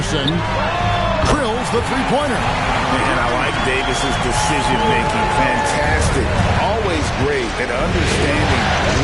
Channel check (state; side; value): identical; both; correlation 1.00